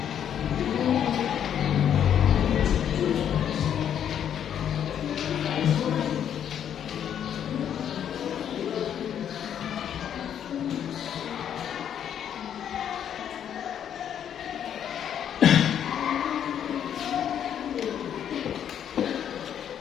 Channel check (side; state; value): right; quieter; 9.3 dB